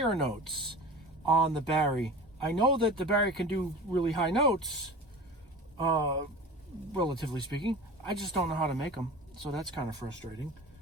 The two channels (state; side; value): normal; both; correlation 0.36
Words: notes on the Barry. I know that the Barry can do really high notes, relatively speaking. I just don't know how to make them, so that's kind of frustrating.